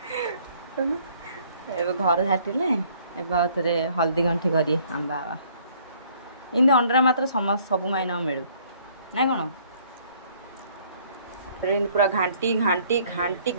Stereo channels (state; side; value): inverted; both; correlation -0.60